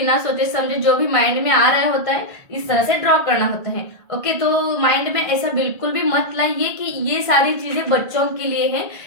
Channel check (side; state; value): right; late; 1.6 ms